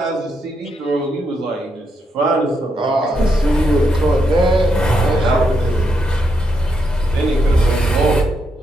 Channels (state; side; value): normal; both; correlation 0.80